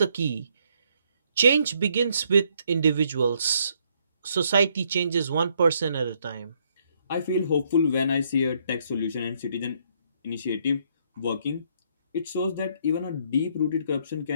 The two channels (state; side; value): inverted; both; correlation -0.71